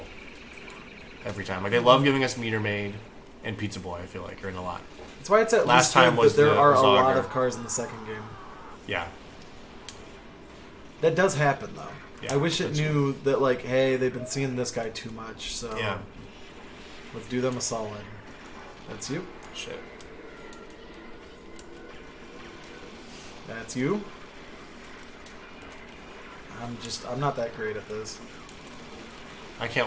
every time. Like they love giving us Meter Maid and Pizza Boy. I feel like are in a lot. That's why it's at Last least time good was that there the are a lot Zogger. of cars in the second game. Yeah. That does happen, though. Yeah, I wish it that's knew that, like, hey, they've been seeing this guy too much, so Yeah. let's do them a solid. That's you. Shit. That's you. I'm not that great at this. I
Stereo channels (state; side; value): identical; both; correlation 1.00